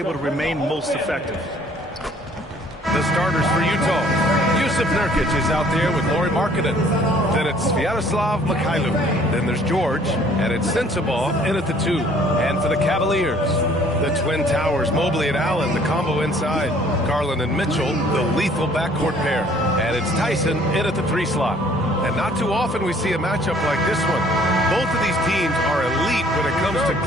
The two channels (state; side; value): normal; both; correlation 0.57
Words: to remain most effective. The starters for Utah. Jusuf Nurkic is out there with Lauri Markkanen. Then it's Sviatoslav Mikhailuk. Then there's George. And it's Sensabaugh in at the 2. And for the Cavaliers, the Twin Towers, Mobley and Allen, the combo inside. Garland and Mitchell, the lethal backcourt pair. And it's Tyson in at the 3 slot. And not too often we see a matchup like this one. Both of these teams are elite when it comes to